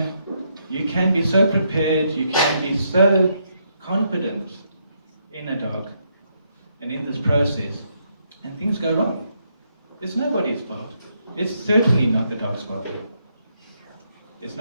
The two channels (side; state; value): both; inverted; correlation -0.77